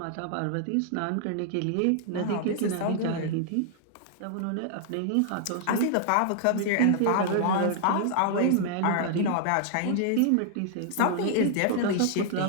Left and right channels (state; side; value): different; both; correlation -0.01